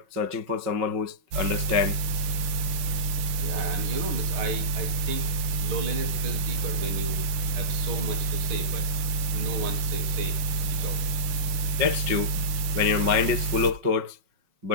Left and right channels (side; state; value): left; late; 6.5 ms